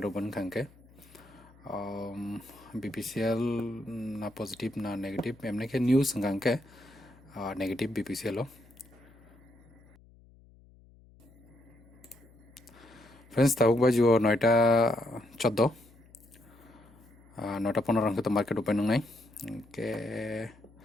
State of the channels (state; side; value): noise; left; hum, 26 dB below the sound